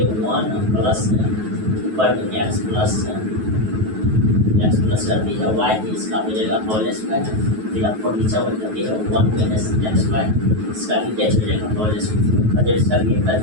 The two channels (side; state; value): left; late; 9.3 ms